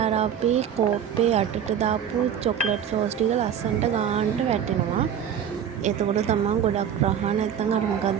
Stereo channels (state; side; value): quieter; left; 8.7 dB